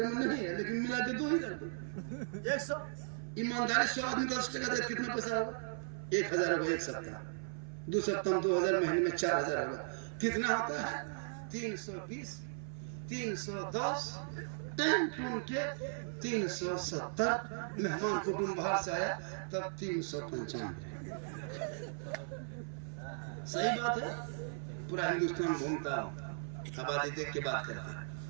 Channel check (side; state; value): left; silent; 53 dB below the other